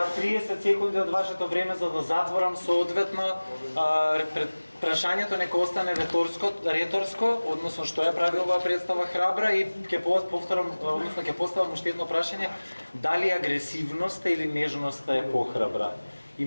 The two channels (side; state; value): both; inverted; correlation -1.00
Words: 30 секунди од вашето време за да затворам соодветно прашањето нека остане реторско, односно што ја прави оваа представа храбра и ќе повторам, односно ќе поставам уште едно прашање, дали агресивноста или нежноста е похрабра? И